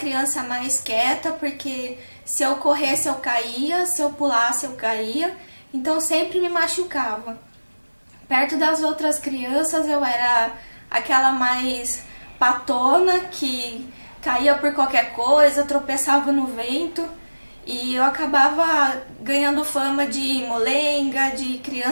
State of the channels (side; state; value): both; inverted; correlation -1.00